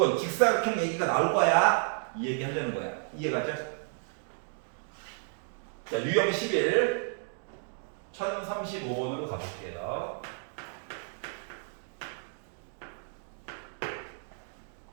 직사각형 얘기가 나올 거야. 이 얘기 하려는 거야. 이해 갔죠? 자, 유형 11 1035번으로 가볼게요.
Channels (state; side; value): silent; left; 57 dB below the other